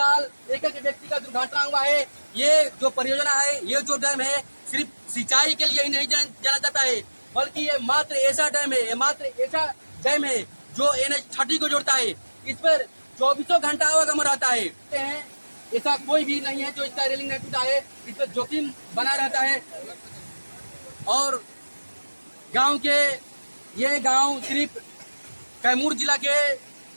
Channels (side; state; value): both; inverted; correlation -1.00